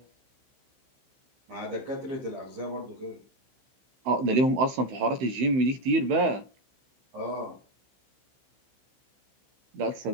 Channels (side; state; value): left; late; 16 ms